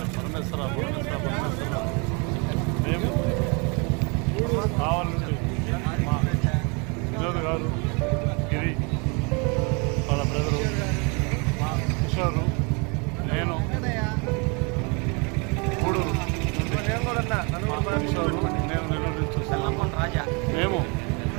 పరమేశ్వర పరమేశ్వర పరమేశ్వర. మేము కావాలి నుండి మా వినోద్ గారు, గిరి, వాళ్ళ బ్రదరు, మా కిషోరు, నేను గూడూరు, కిషోరు, నేను నెల్లూరు నుంచి చూస్తున్నాము. మేము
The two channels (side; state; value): left; quieter; 32.3 dB